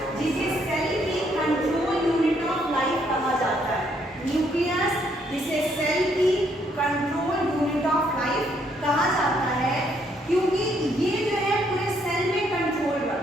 जिसे सेल की कंट्रोल यूनिट ऑफ लाइफ कहा जाता है। न्यूक्लियस जिसे सेल की कंट्रोल यूनिट ऑफ लाइफ कहा जाता है, क्योंकि ये जो है पूरे सेल में कंट्रोल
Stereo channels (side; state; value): both; normal; correlation 0.71